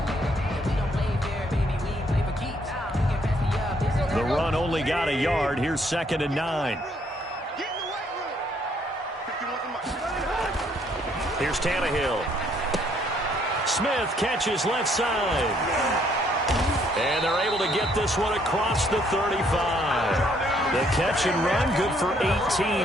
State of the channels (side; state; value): both; normal; correlation 0.67